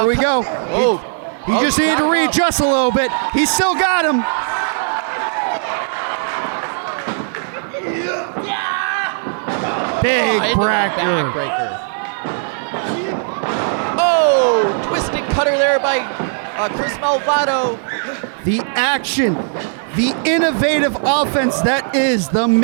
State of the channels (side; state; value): left; silent; 67 dB below the other